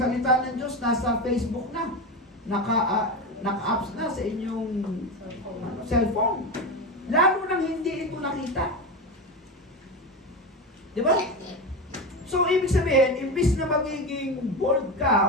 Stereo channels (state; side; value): normal; both; correlation 0.20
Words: ng Diyos, nasa Facebook na, naka-apps na sa inyong cellphone. Lalo nang hindi ito nakita. Di ba? So, ibig sabihin, imbis na magiging bold